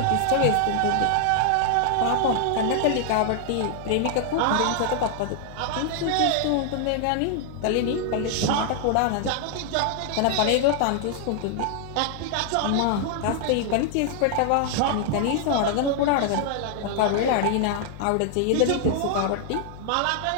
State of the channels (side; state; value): both; different; correlation 0.00